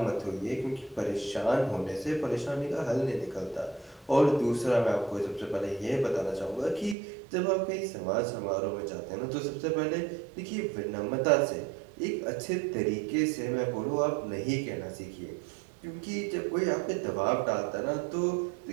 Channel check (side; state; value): left; drops out; at 7.0 s